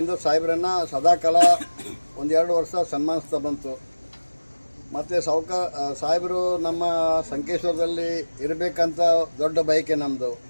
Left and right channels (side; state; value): both; inverted; correlation -1.00